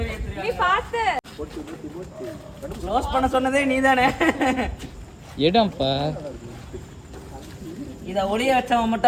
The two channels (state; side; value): identical; both; correlation 1.00